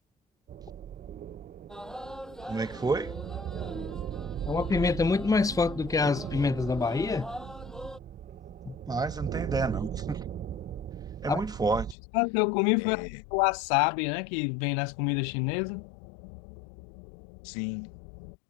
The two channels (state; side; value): drops out; right; at 12.0 s